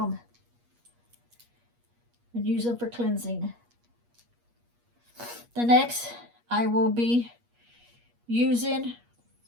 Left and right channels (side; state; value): left; late; 8.4 ms